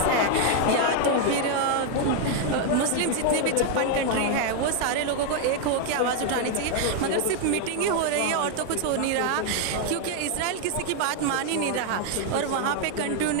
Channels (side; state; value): both; different; correlation 0.00